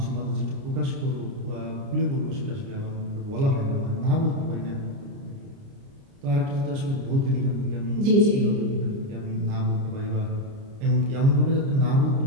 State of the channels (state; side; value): late; left; 29 ms